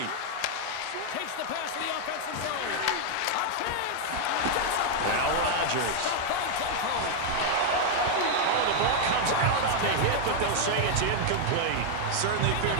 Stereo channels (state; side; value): different; both; correlation 0.00